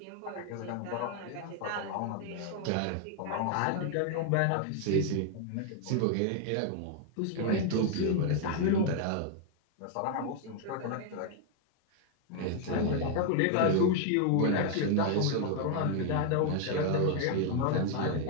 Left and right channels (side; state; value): both; different; correlation 0.00